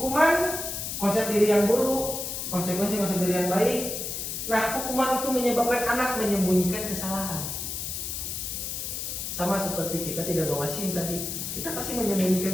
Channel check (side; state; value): left; noise; hiss, 4 dB below the sound